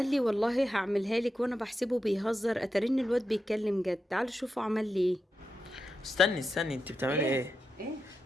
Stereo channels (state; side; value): normal; both; correlation 0.88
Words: لي والله هعملها لك، وانا بحسبه بيهزر، اترن الواد بيتكلم جد. تعالوا شوفوا عمل لي ايه. استني انت بتعملي ايه؟ ايه؟